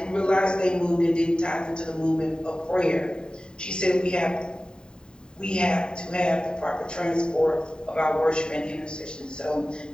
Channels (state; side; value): late; right; 0.048 ms